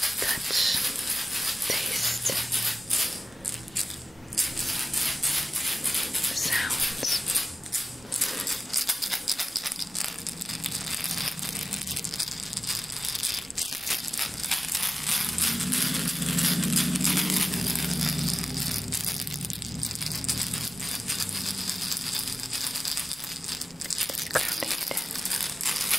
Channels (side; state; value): both; normal; correlation 0.95